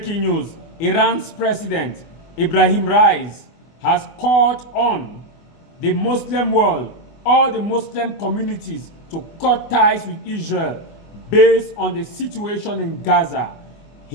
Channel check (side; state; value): right; late; 24 ms